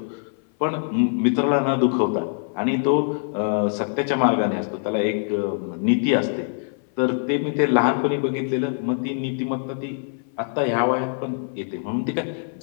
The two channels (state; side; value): silent; right; 58 dB below the other